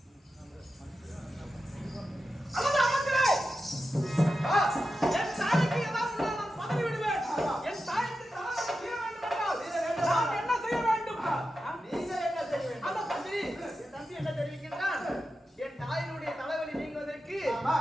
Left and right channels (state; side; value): normal; both; correlation 0.90